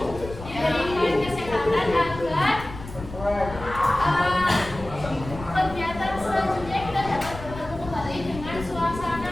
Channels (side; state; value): left; noise; rumble, 13 dB below the sound